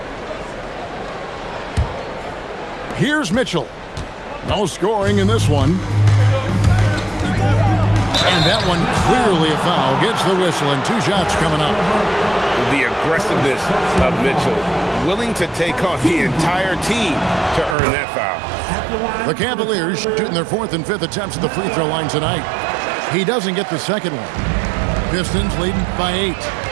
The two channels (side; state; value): left; drops out; at 17.8 s